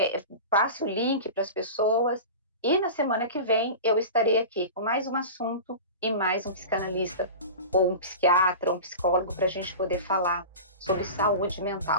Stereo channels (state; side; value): inverted; both; correlation -0.32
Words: passe o link para as pessoas. E na semana que vem eu estarei aqui com mais um assunto e mais um psicanalista ou um psiquiatra, ou um psicólogo para a gente poder falar sobre saúde